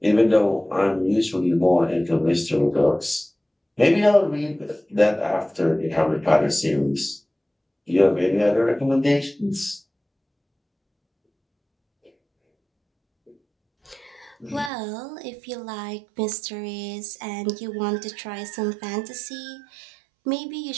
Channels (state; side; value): drops out; left; at 14.7 s